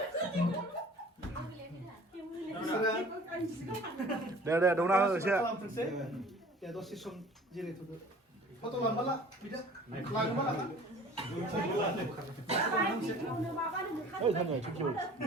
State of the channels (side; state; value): both; normal; correlation 0.47